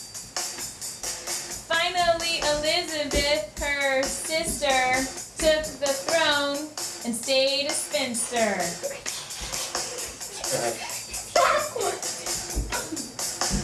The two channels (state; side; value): identical; both; correlation 1.00